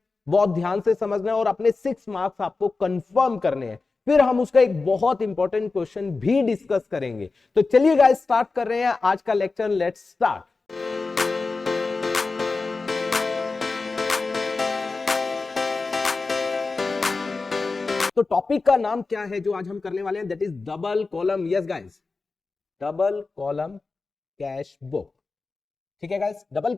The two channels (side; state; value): right; quieter; 4.0 dB